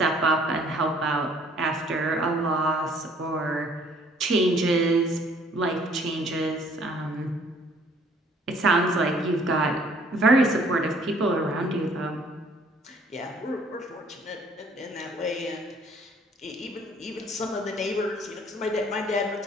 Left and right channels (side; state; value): both; normal; correlation 0.59